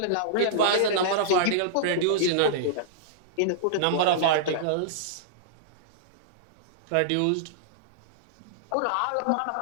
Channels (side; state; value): both; different; correlation -0.02